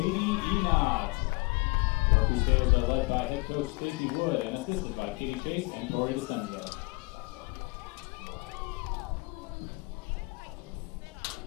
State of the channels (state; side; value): quieter; right; 27.8 dB